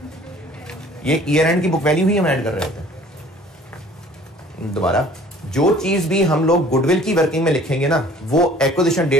ये ईयर एंड की बुक वैल्यू ही हम ऐड कर रहे होते हैं। दोबारा, जो चीज भी हम लोग गुडविल की वर्किंग में लिखेंगे ना वो एक्विजिशन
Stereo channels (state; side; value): normal; both; correlation 0.51